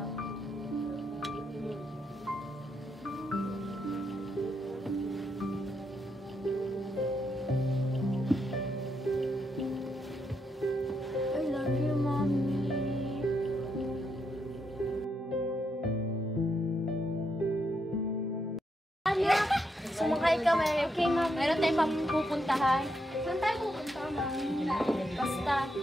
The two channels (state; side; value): normal; both; correlation 0.80